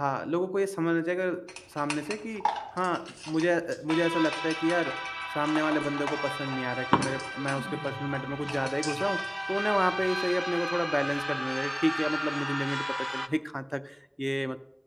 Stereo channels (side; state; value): both; identical; correlation 1.00